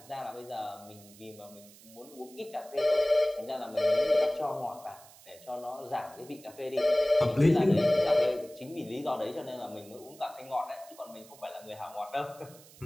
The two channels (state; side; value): noise; right; hiss, 22 dB below the sound